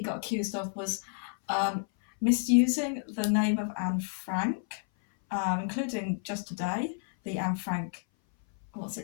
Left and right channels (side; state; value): right; silent; 58 dB below the other